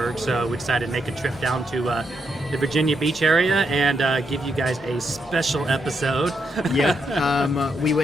so we decided to make a trip down to the Virginia Beach area and give you guys a special episode. We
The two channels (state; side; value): normal; both; correlation 0.80